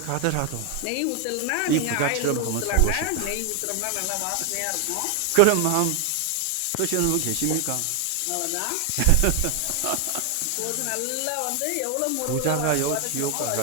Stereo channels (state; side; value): different; both; correlation 0.00